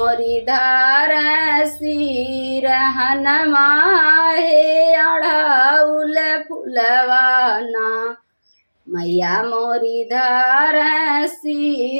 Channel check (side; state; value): both; inverted; correlation -1.00